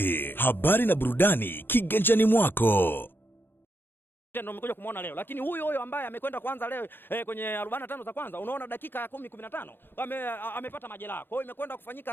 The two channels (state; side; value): late; right; 0.10 ms